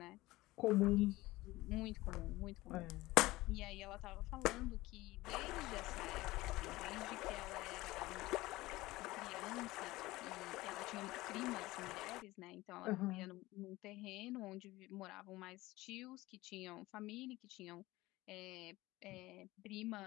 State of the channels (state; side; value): quieter; right; 19.0 dB